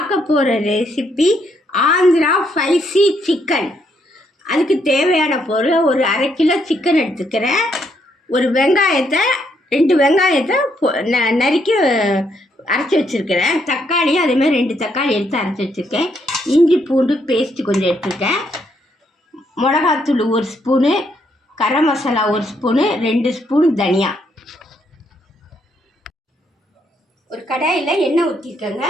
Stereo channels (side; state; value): both; normal; correlation 0.74